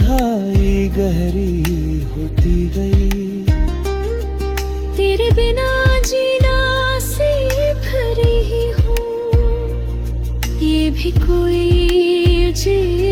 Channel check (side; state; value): both; identical; correlation 1.00